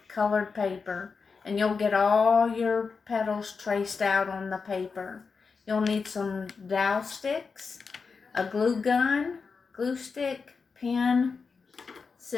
colored paper, and you'll get all your petals traced out on the paper. You'll need some dowel sticks, a glue gun, glue stick, pen,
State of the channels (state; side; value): quieter; right; 5.0 dB